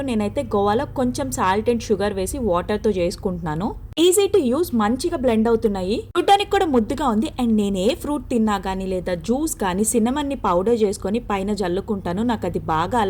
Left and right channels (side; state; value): both; identical; correlation 1.00